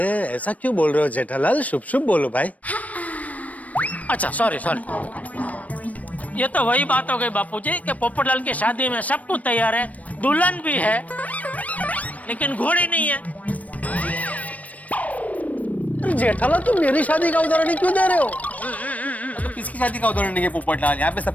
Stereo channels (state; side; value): late; right; 0.069 ms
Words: ऐसा क्यों बोल रहे हो जेठालाल? शुभ शुभ बोलो भाई। अच्छा सॉरी सॉरी। ये तो वही बात हो गई बापूजी कि पोपटलाल की शादी में सब कुछ तैयार है, दुल्हन भी है लेकिन घोड़ी नहीं है। जेठालाल तुम मेरी शादी का उदाहरण ही क्यों दे रहे हो? तो किसकी शादी का उदाहरण नहीं है पोपटलाल? यहाँ पे